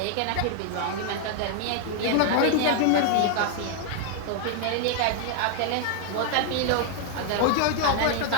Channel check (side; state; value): both; different; correlation 0.00